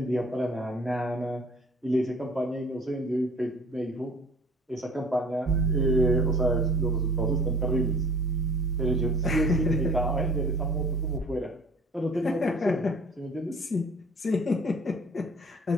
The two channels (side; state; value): both; normal; correlation 0.49